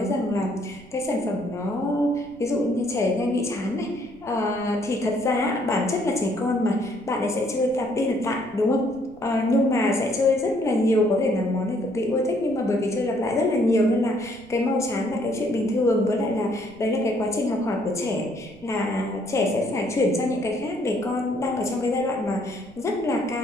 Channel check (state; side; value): noise; right; rumble, 24 dB below the sound